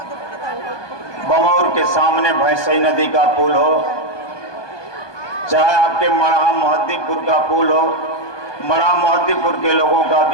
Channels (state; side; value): late; right; 1.2 ms